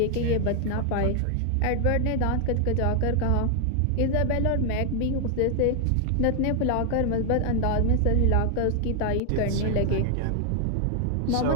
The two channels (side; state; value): both; different; correlation 0.00